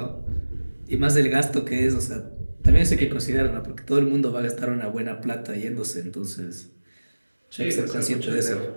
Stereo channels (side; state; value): both; inverted; correlation -1.00